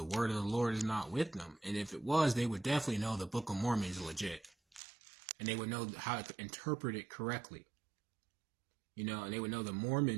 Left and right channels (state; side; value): drops out; left; at 4.8 s